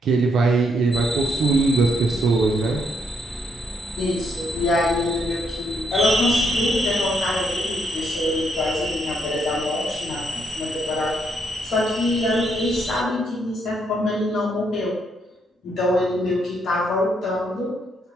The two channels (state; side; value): normal; both; correlation 0.75